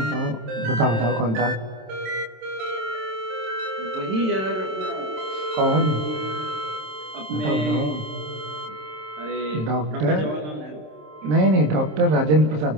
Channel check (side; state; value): left; late; 27 ms